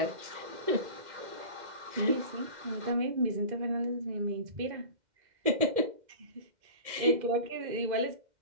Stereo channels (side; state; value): left; late; 2.1 ms